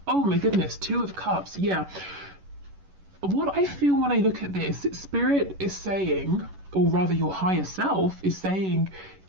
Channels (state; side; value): late; left; 11 ms